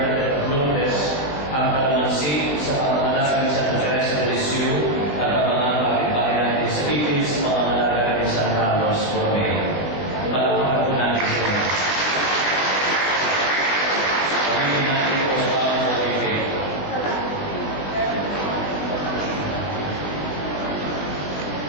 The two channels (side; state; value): right; late; 21 ms